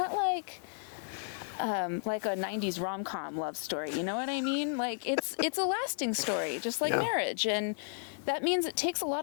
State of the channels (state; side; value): silent; right; 56 dB below the other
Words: like a 90s rom-com love story. You know what I mean? Like it's a lasting story, just like marriage. And that means it takes a lot